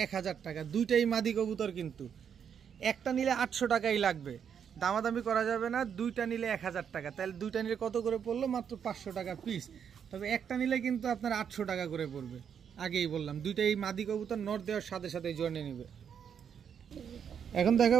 1000 টাকা। 2টাই মাদি কবুতর, কিন্তু একটা নিলে 800 টাকাই লাগবে, দামাদামি করা যাবে না। 2টা নিলে 1000 টাকা, তাহলে 2টা নিলে কত করে পড়লো, মাত্র 500 টাকা পিস। তবে একটা নিলে কিন্তু আপনার 800 টাকা করে পড়বে। আগেই বললাম 2টাই মাদি কবুতর, নর দেওয়ার সাথে সাথে জোনে নিবে। এখন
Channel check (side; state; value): left; quieter; 7.8 dB